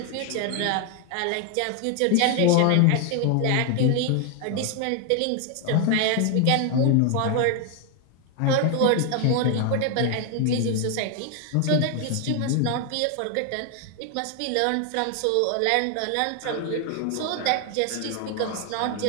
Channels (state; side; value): different; both; correlation 0.01